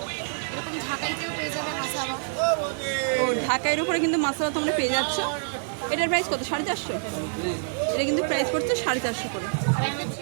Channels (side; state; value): left; silent; 58 dB below the other